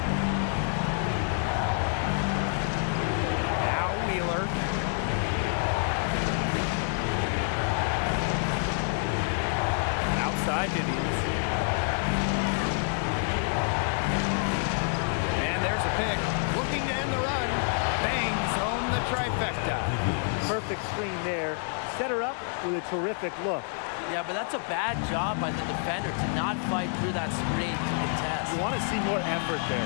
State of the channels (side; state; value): right; silent; 57 dB below the other